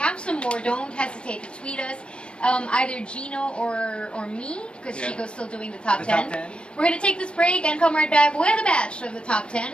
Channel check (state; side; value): late; right; 0.057 ms